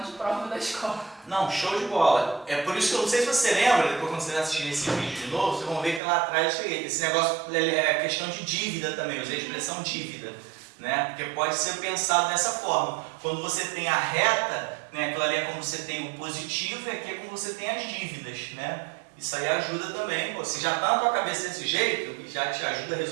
de prova da escola. Não, show de bola. É por isso que eu não sei se você lembra, depois quando você assistir esse vídeo de novo, vocês vão ver que lá atrás eu cheguei. Esse negócio é questão de dívida também, eu usei a expressão dívida, né? Porque pode ser pensado dessa forma. Quando você tem a reta, né, aquilo ali é como você tem o positivo e aqui é como você tem as dívidas, né? Isso aí ajuda também. Pô, se já está na tua cabeça desse jeito, e já te ajuda a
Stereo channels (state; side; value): drops out; left; at 6.0 s